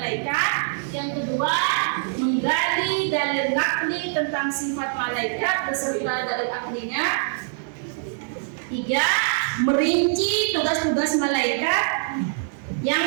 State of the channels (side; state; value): left; silent; 63 dB below the other